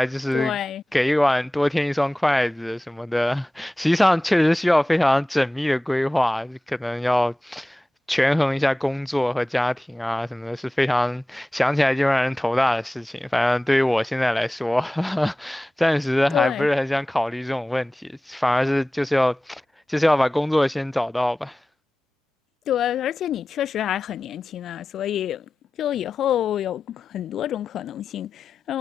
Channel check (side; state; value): both; normal; correlation 0.96